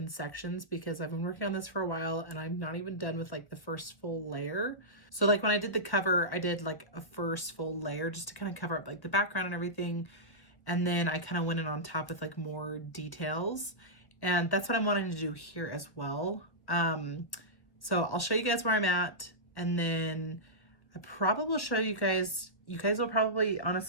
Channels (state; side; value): late; right; 1.4 ms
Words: sections, because I've been working on this for a while and I'm not even done with like the first full layer. So like when I did the cover, I did like a first full layer just to kind of cover up like the background and everything. And then I kind of went in on top with like more details, and that's what I'm wanting to do here as well. So I'll show you guys where I'm at, and then I probably will show you guys will probably